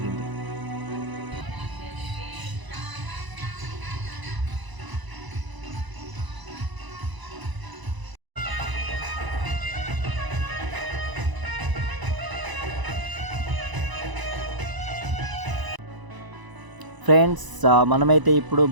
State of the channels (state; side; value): late; left; 1.0 ms